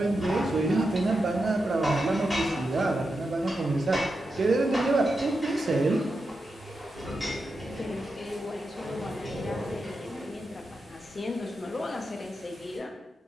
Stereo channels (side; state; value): both; normal; correlation 0.88